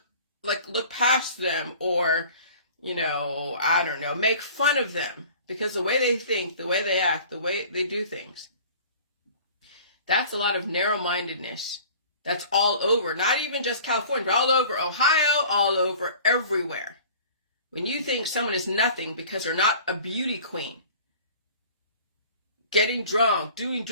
past them or, I don't know, make fun of them because the way they think, the way they act, the way they do things, that's a lot of narrow-mindedness. That's all over, not even just California, but all over Ohio, all over everywhere. When you think someone is nothing because they're not a beauty queen, getting drunk, doing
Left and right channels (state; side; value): inverted; both; correlation -0.46